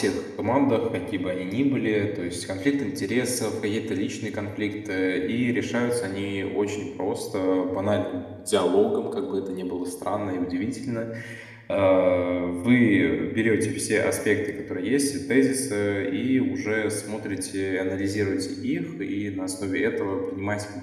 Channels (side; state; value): both; identical; correlation 1.00